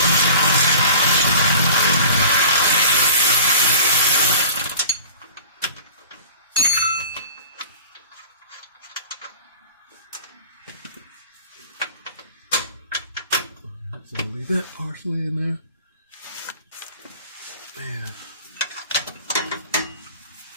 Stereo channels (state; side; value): inverted; both; correlation -0.42